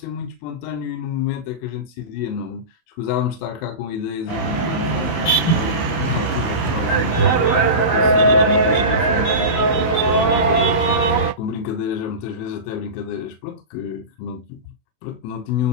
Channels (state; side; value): late; right; 26 ms